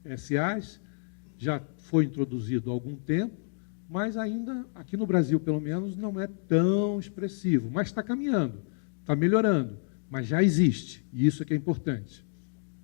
SAs, já foi introduzido há algum tempo, mas ainda, aqui no Brasil, pelo menos, não é tão expressivo. Mas está caminhando, está melhorando, mas já existe, e isso é que é importante.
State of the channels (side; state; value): right; silent; digital silence